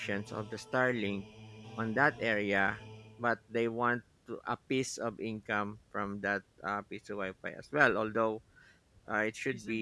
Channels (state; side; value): identical; both; correlation 1.00